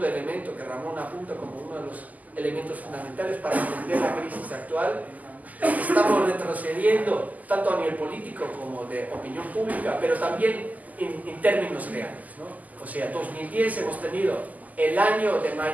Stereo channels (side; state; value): left; late; 0.079 ms